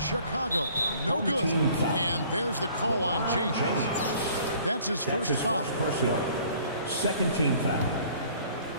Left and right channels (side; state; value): both; inverted; correlation -0.54